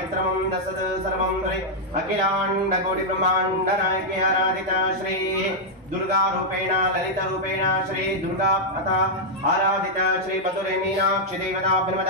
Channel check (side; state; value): both; normal; correlation -0.05